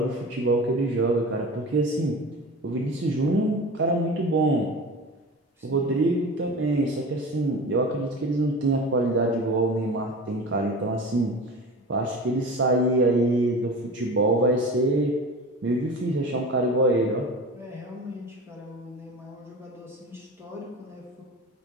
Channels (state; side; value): normal; both; correlation 0.33